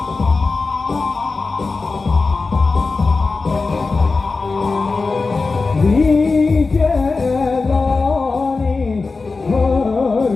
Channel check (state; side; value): quieter; right; 4.0 dB